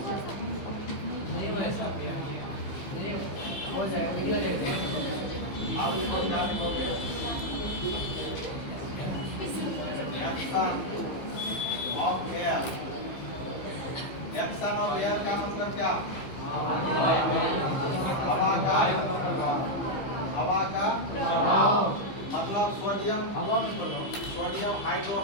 आप लिखो क्या लिखोगे? एक्शन ऑफ एयर का मतलब क्या? हवा का मतलब सोडियम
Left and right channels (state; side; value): late; right; 15 ms